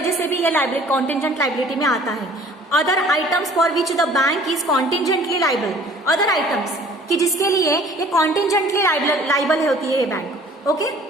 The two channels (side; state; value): both; normal; correlation 0.52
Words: से भी ये लाइबिलिटी कॉन्टिजेंट लाइबिलिटी में आता है। Other items for which the bank is contingently liable, other items कि जिसके लिए ये कॉन्टिजेंटली लाइबल होती है ये बैंक। ओके,